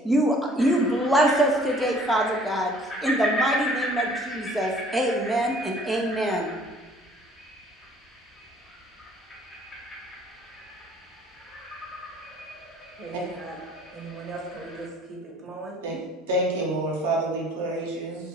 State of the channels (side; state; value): both; normal; correlation 0.55